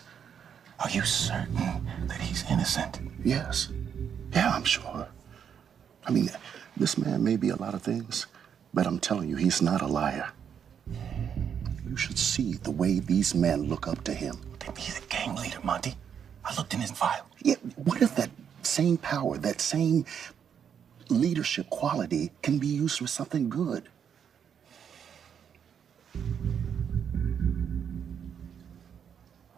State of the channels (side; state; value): left; quieter; 7.9 dB